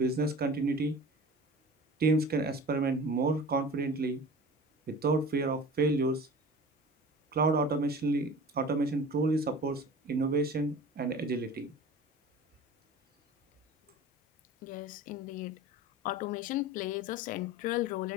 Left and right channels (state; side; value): normal; both; correlation 0.39